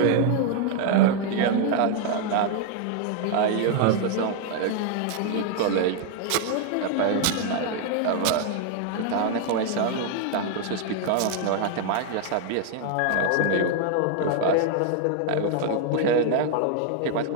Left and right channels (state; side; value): different; both; correlation 0.00